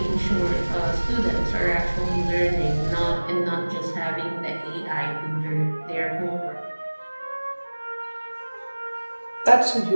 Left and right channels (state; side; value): inverted; both; correlation -1.00